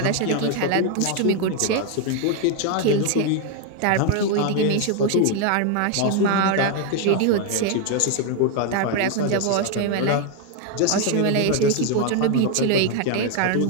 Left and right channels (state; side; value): different; both; correlation 0.01